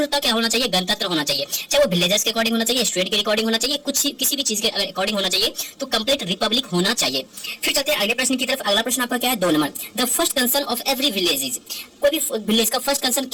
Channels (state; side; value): identical; both; correlation 1.00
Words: क्या होना चाहिए, गणतंत्र होना चाहिए। चाहे वो विलेजर्स के अकॉर्डिंग होना चाहिए, स्टेट के अकॉर्डिंग होना चाहिए, कुछ किसी भी चीज के अकॉर्डिंग होना चाहिए, तो कंप्लीट रिपब्लिक होना चाहिए। फिर चलते हैं अगले प्रश्न की तरफ। अगला प्रश्न आपका क्या है 2 number. The first concern of every village is. कोई भी विलेज का फर्स्ट कंसर्न